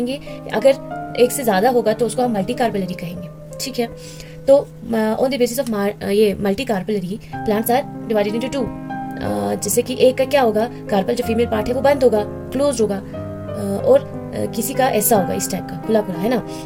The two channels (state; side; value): identical; both; correlation 1.00